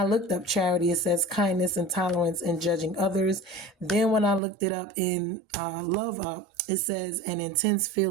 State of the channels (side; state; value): left; drops out; at 4.4 s